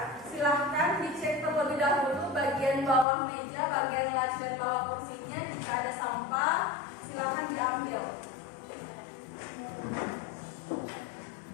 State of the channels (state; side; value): drops out; right; at 3.1 s